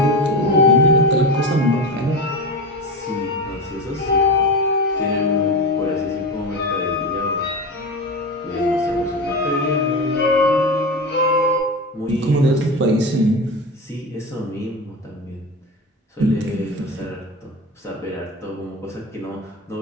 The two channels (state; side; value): normal; both; correlation 0.23